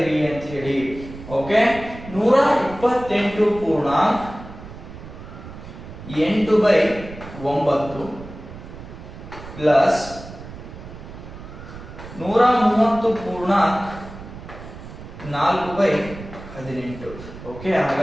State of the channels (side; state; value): right; noise; rumble, 14 dB below the sound